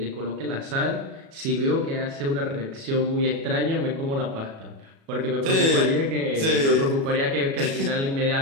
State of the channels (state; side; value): late; left; 36 ms